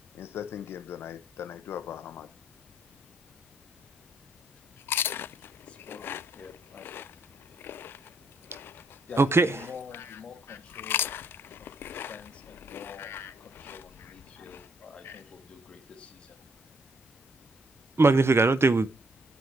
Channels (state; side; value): normal; both; correlation 0.70